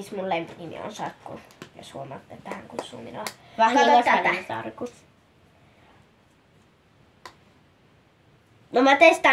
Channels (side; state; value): both; identical; correlation 1.00